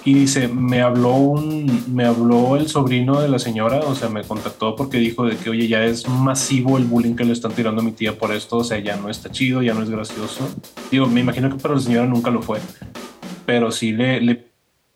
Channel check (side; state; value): both; identical; correlation 1.00